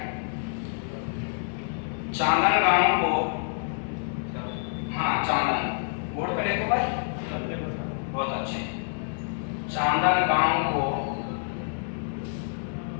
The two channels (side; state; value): right; silent; digital silence